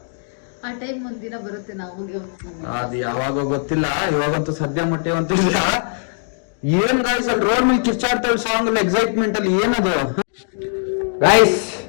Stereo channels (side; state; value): right; silent; digital silence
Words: ಆ ಟೈಮ್ ಒಂದಿನ ಬರುತ್ತೆ, ನಾವು ಅದು ಯಾವಾಗ ಗೊತ್ತಿಲ್ಲ, ಇವಾಗಂತೂ ಸದ್ಯ ಮಟ್ಟಿವಂತಿಲ್ಲ. ಏನ್ ಗಾಯ್ಸ್, ಅಲ್ಲಿ ರೋಡ್ ಮೇಲೆ ಕಿರ್ಚಾಡ್ತಾಳೆ ಸಾಂಗ್ ಅಲ್ಲಿ, ಎಕ್ಸೈಟ್ಮೆಂಟ್ ಅಲ್ಲಿ ಏನದು. ಗಾಯ್ಸ್,